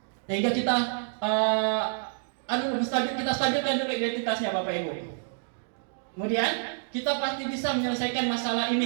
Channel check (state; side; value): silent; left; digital silence